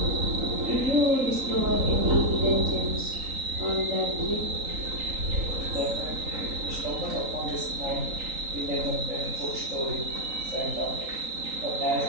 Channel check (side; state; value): left; late; 3.9 ms